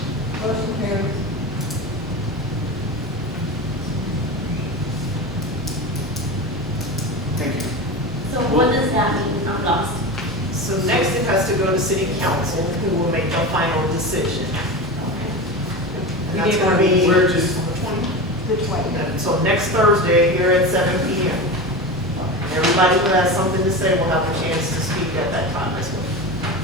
motion carries. Thank you. So what does that mean? I'm lost. So next it has to go to city council, who will make the final decision. And that's gonna be, We're just, The 20th. so next Thursday here at 7 PM. And everybody who has something to say will have a chance to speak at that time as well.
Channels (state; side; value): normal; both; correlation 0.25